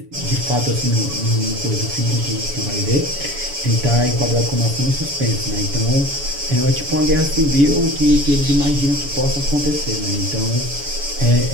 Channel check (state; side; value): late; left; 7.1 ms